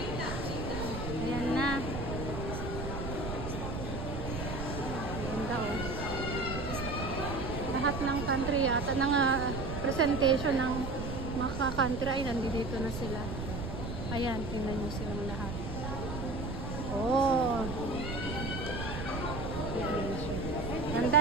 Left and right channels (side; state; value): right; noise; rumble, 5 dB below the sound